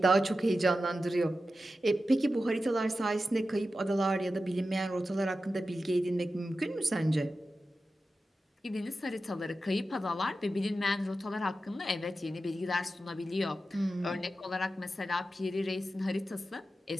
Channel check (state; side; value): normal; both; correlation 0.92